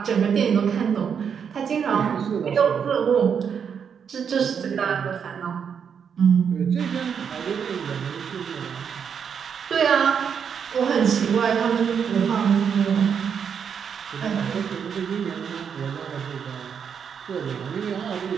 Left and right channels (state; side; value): quieter; left; 7.2 dB